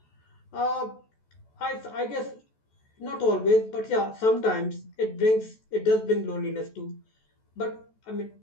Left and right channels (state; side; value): late; right; 14 ms